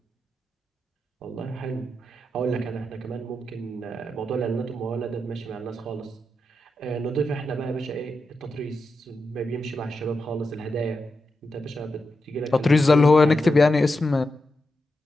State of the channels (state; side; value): normal; both; correlation 0.88